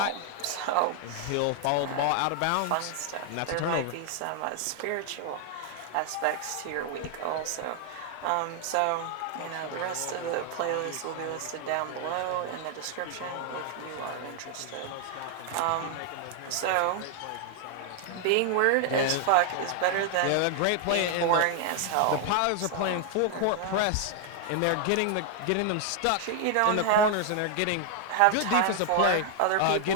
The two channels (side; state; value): both; different; correlation 0.00